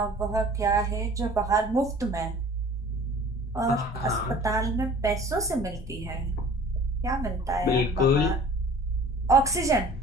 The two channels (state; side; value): normal; both; correlation 0.47